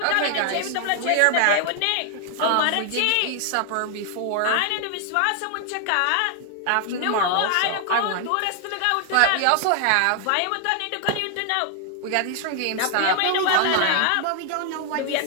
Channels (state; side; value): different; both; correlation 0.00